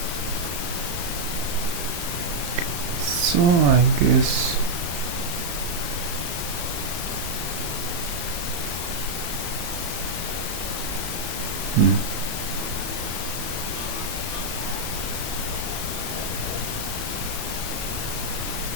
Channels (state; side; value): late; left; 34 ms